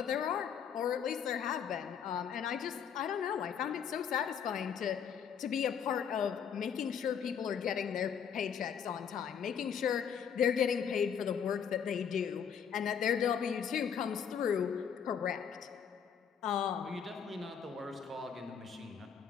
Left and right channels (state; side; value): quieter; right; 7.6 dB